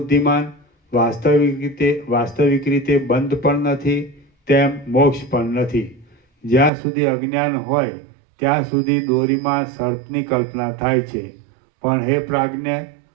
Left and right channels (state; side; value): drops out; left; at 6.7 s